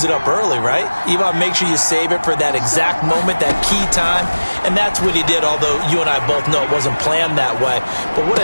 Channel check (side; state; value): both; inverted; correlation -1.00